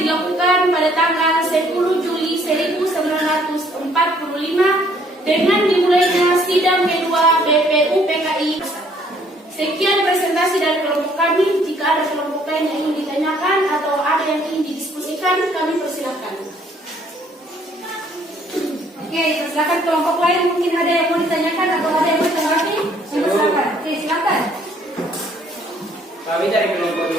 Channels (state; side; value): normal; both; correlation 0.63